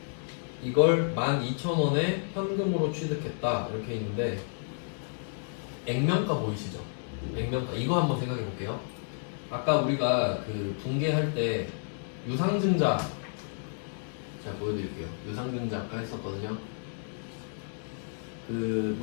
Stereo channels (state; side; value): silent; right; digital silence